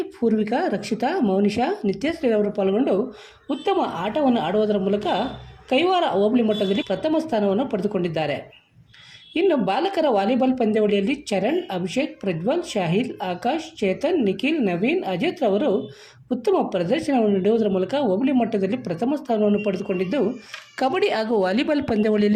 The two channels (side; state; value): both; identical; correlation 1.00